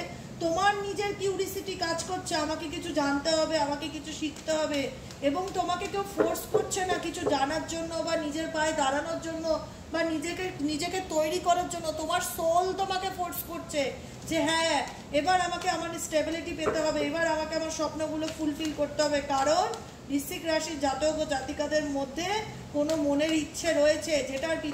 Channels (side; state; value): both; identical; correlation 1.00